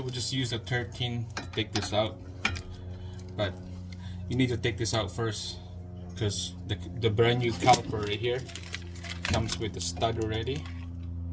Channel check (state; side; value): identical; both; correlation 1.00